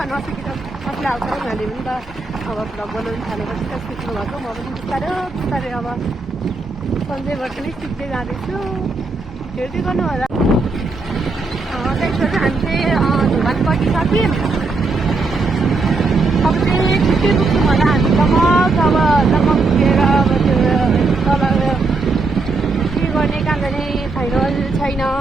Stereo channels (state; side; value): quieter; left; 3.8 dB